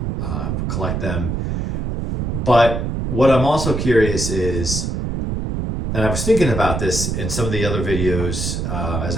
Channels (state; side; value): noise; right; rumble, 2 dB below the sound